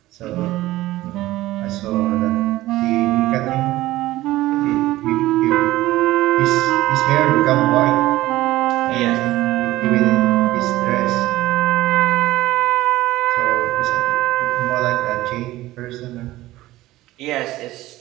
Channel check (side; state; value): left; quieter; 16.7 dB